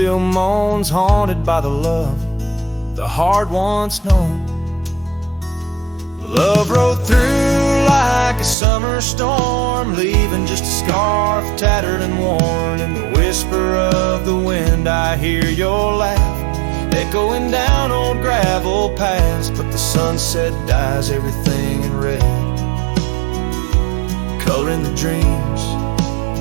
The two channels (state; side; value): drops out; left; at 8.6 s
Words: moans, haunted by the love the heart once known. Love rode through like a summer storm, leaving just a scarf tattered and worn. In the whisper of the wind I hear your laugh echoing down old gravel paths. But the sunset dyes everything in red, coloring the dreams